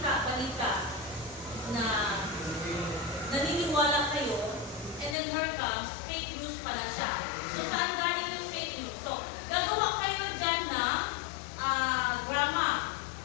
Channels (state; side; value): drops out; right; at 5.2 s